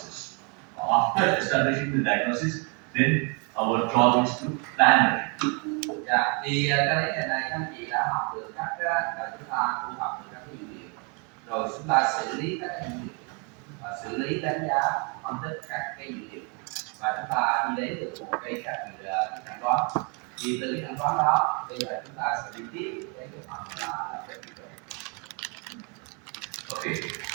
After establishing the diagnosis, then our job is to plan it. Dạ, thì cái đấy ngày này các anh chị đã học được cách là chúng ta thu thập được các cái dữ liệu, rồi chúng ta xử lý các cái dữ liệu và xử lý đánh giá phân tích các cái dữ liệu, và chúng ta đi đến được một cái chẩn đoán. Thì từ cái chẩn đoán đó bây giờ chúng ta sẽ đi tiếp đến cái phần là cái kỹ thuật. Okay,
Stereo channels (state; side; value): quieter; left; 34.4 dB